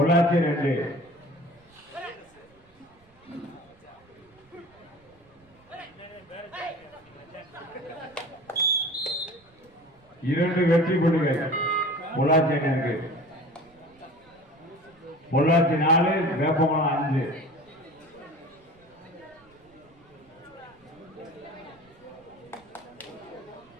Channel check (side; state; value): right; noise; rumble, 30 dB below the sound